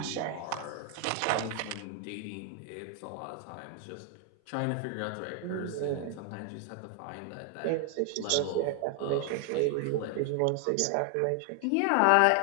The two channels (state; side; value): different; both; correlation 0.00